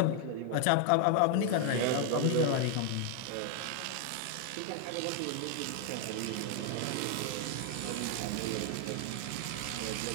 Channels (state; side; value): different; both; correlation 0.00